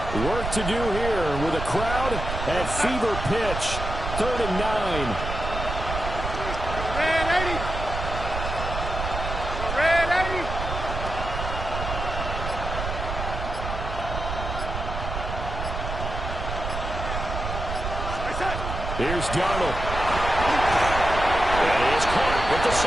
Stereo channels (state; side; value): noise; right; rumble, 5 dB below the sound